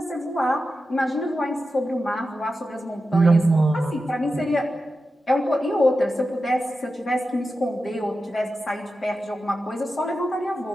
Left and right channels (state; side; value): normal; both; correlation 0.91